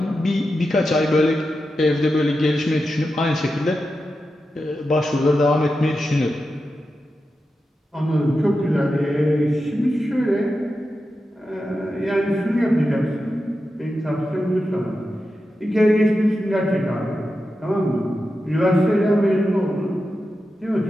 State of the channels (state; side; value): normal; both; correlation 0.90